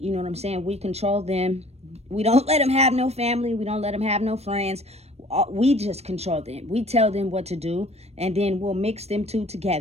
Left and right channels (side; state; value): left; late; 0.31 ms